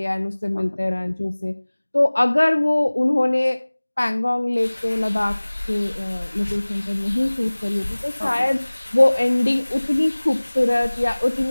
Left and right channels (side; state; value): both; inverted; correlation -1.00